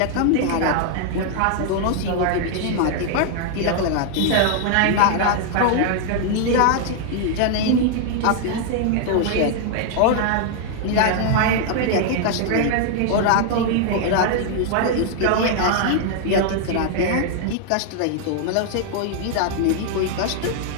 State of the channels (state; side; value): different; both; correlation 0.00